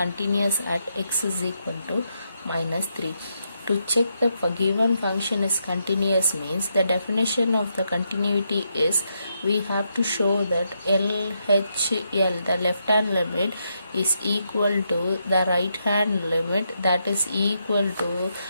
at x is equal to minus 3. To check the given function is continuous means the definition of the continuity is we have to show that LHL, the left hand limit, is equal to the right hand limit, that is equal to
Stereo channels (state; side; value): inverted; both; correlation -0.81